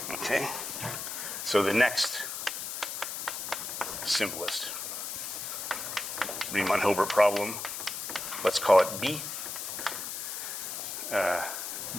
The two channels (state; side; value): noise; left; hiss, 5 dB below the sound